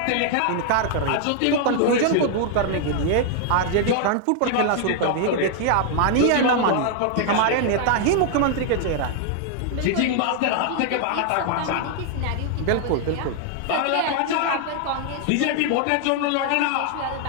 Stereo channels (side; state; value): both; different; correlation 0.00